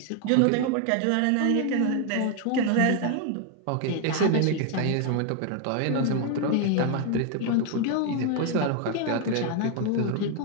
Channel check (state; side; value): different; both; correlation 0.01